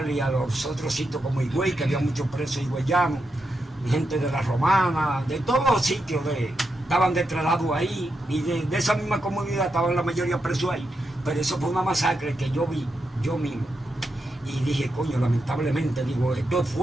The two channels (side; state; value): both; normal; correlation 0.85